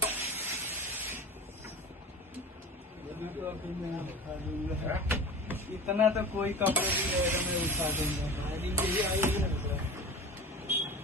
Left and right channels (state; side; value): normal; both; correlation 0.34